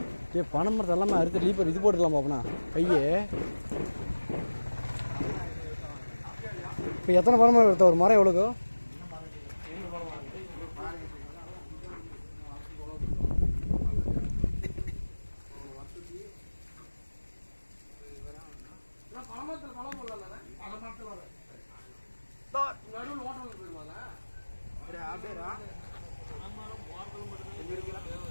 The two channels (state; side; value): inverted; both; correlation -1.00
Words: பனை மரத்தை எல்லாமே அறுத்து லீப்பர் இது போட்டுக்கலாமா அப்படின்னா பையே? இப்போ எத்தனை பனை மரம் எடுத்த? ஒரு மரம் எவ்வளோக்கோ?